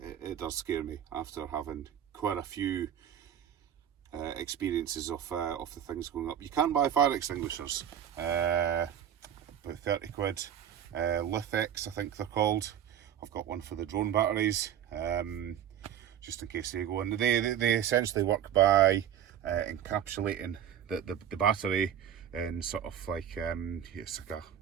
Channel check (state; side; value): quieter; left; 9.8 dB